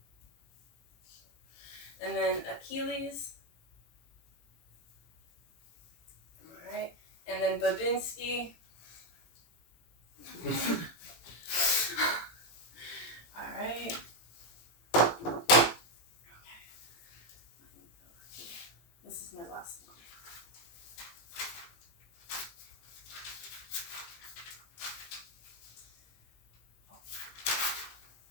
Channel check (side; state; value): right; late; 17 ms